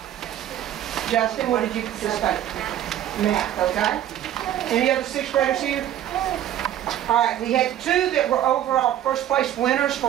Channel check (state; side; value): quieter; left; 11.7 dB